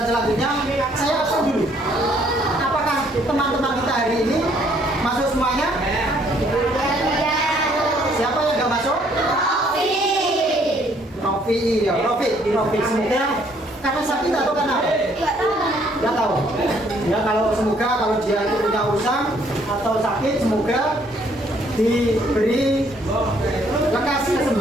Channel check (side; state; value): both; normal; correlation 0.65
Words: selanjutnya, saya absen dulu. Apakah teman-teman kita hari ini masuk semuanya? Siapa yang nggak masuk? Novi, ya Novi semoga karena sakit atau karena apa? Nggak tahu. Ya kalau semoga kalau dia itu punya urusan atau sakit semoga diberi lekas